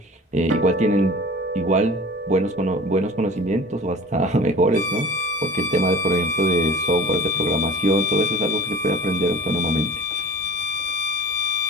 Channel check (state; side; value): normal; both; correlation 0.41